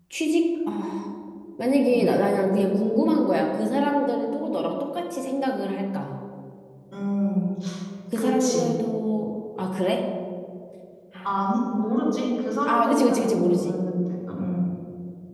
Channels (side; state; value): both; identical; correlation 1.00